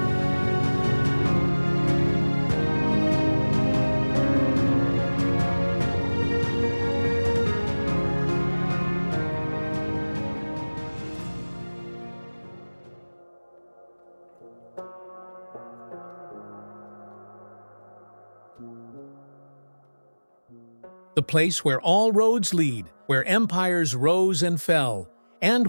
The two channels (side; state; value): both; inverted; correlation -1.00